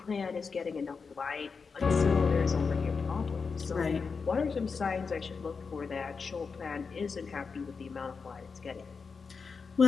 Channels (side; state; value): right; quieter; 5.2 dB